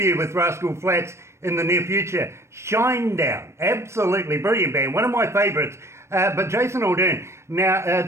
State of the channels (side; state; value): left; late; 0.13 ms